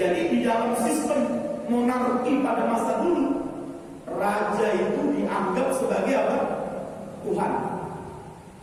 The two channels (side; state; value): both; identical; correlation 1.00